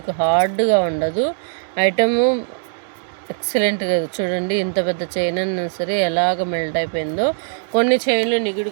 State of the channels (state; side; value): silent; left; digital silence